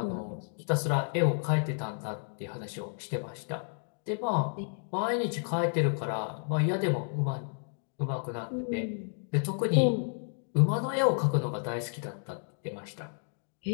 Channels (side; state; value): right; silent; digital silence